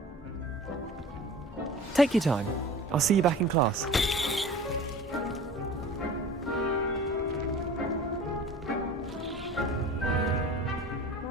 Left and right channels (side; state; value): both; normal; correlation 0.40